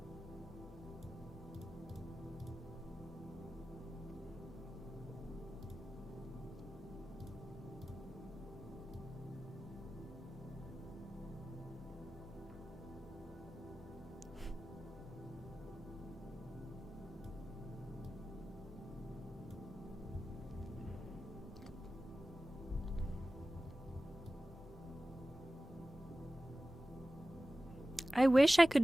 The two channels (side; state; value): both; normal; correlation 0.95